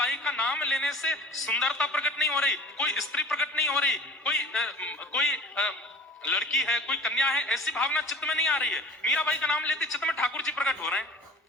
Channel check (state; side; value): normal; both; correlation 0.42